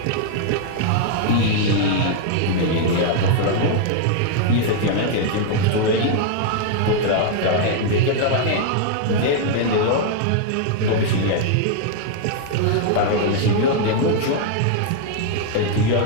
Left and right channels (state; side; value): different; both; correlation 0.00